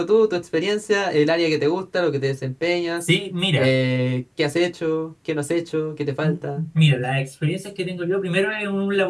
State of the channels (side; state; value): both; identical; correlation 1.00